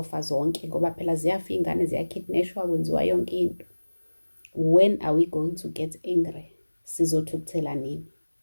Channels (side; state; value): both; inverted; correlation -1.00